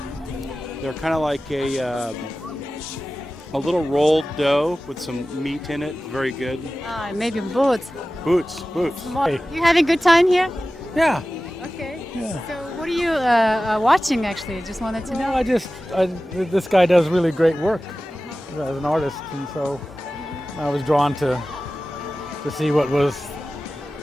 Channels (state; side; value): normal; both; correlation 0.96